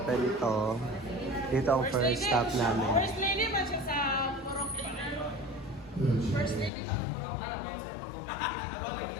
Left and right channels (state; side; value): drops out; right; at 6.7 s